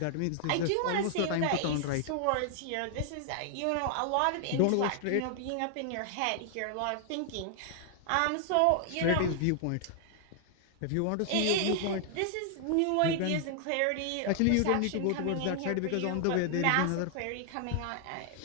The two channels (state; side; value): different; both; correlation 0.00